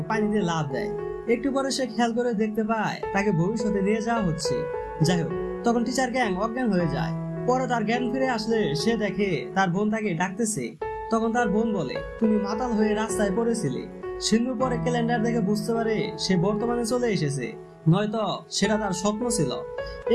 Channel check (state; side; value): identical; both; correlation 1.00